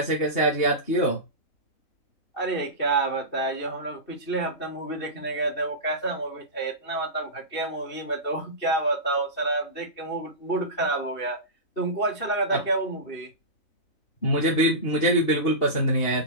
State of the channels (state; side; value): late; right; 2.7 ms